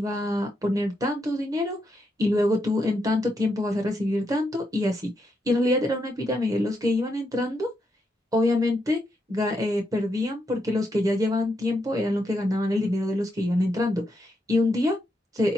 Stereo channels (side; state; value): both; normal; correlation 0.81